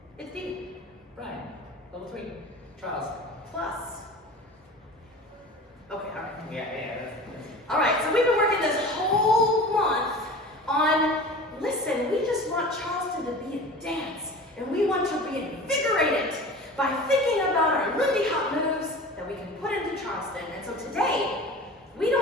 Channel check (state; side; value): normal; both; correlation 0.37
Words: It's Steve. Brian. Level 3. Charles. Plus. Okay, alright. Yeah. Alright, so we've been working this whole month on, listen, we just want Charleston to be a dance. And we want to reinvigorate it by thinking about our Lindy Hop moves that we can put into Charleston. And so today, we